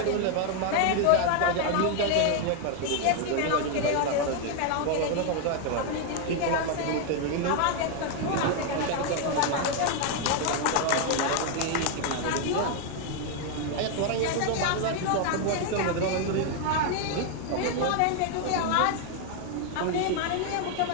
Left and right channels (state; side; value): different; both; correlation 0.01